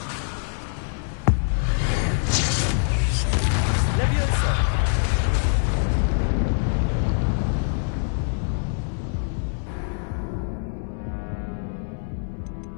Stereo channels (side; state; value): right; silent; 60 dB below the other